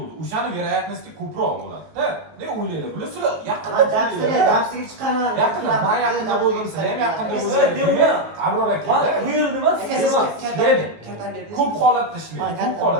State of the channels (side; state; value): left; late; 19 ms